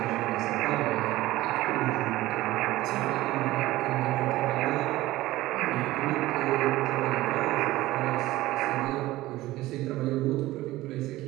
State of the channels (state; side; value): quieter; left; 17.3 dB